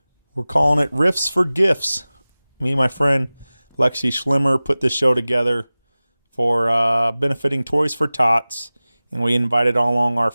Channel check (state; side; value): inverted; both; correlation -0.98